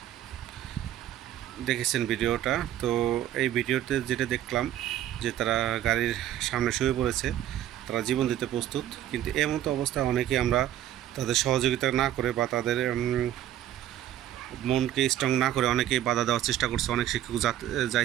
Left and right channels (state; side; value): quieter; left; 12.2 dB